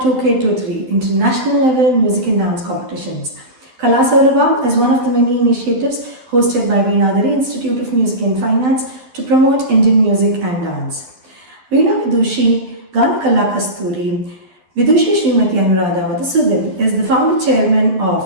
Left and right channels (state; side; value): late; left; 12 ms